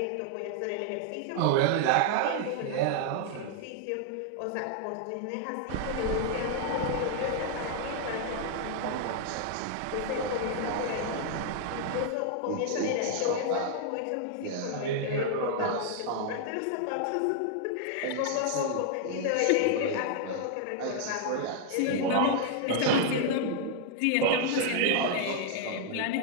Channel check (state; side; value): different; both; correlation -0.01